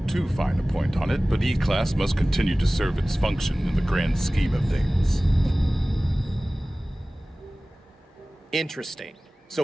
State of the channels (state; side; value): normal; both; correlation 0.98